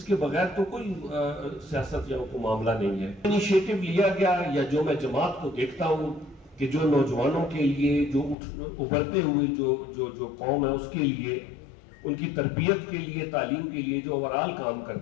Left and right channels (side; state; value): right; drops out; at 8.3 s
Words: کے بغیر تو کوئی سیاست یا کوئی معاملہ نہیں ہے. انیشیٹو لیا گیا، یا جو میں جماعت کو دیکھتا ہوں کہ جو نوجوانوں کے لیے، جو ابھرتے ہوئے جو قوم ہے اس کے لیے، ان کی تربیت کے لیے، تعلیم کے لیے جو اوورال کام